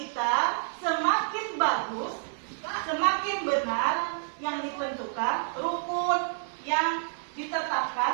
semakin bagus, semakin benar yang ditentukan, rukun yang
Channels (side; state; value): left; silent; digital silence